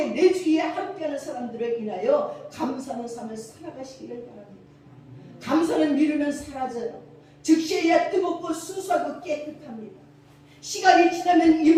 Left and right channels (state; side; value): identical; both; correlation 1.00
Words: 내 주위에 함께하는 사람들을 인하여 감사하는 삶을 살아가시기를 바랍니다. 감사는 미루면 사라져요. 즉시해야 뜨겁고 순수하고 깨끗합니다. 시간이 지나면